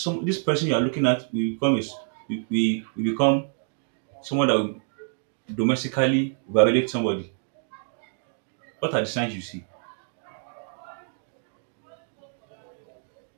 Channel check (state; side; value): silent; left; 58 dB below the other